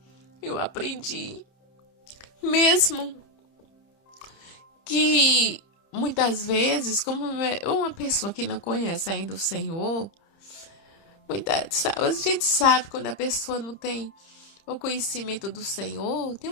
Eu aprendi, mesmo que muitas vezes, como uma pessoa que não conhece ainda o Senhor, a gente sabe quando a pessoa não tem o conhecimento do Senhor,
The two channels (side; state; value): right; late; 30 ms